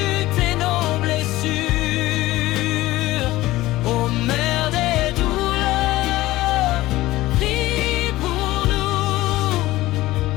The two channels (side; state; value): right; quieter; 17.4 dB